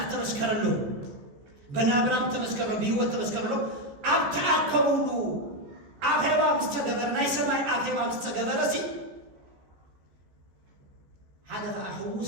تمسكر له بنابرام تمسكر له بيوت تمسكر له أبتعكبوا أخيبا مستقبر ناي سماي أخيبا مستقبر سي هذا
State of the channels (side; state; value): left; late; 14 ms